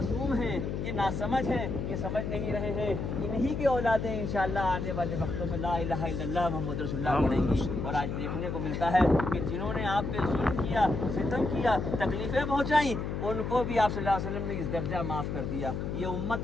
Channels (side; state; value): left; noise; hum, 3 dB below the sound